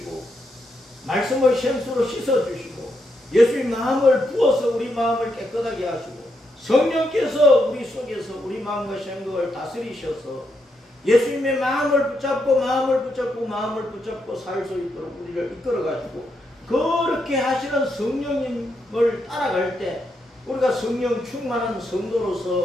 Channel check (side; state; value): both; normal; correlation 0.80